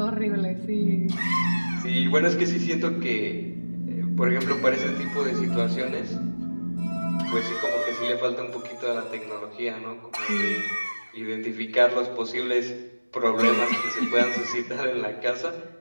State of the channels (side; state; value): both; inverted; correlation -1.00